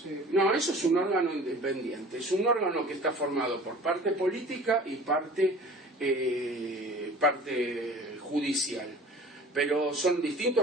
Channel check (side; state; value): both; normal; correlation 0.44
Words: No, eso es un órgano independiente, es un órgano que está formado por parte política y parte judicial, pero son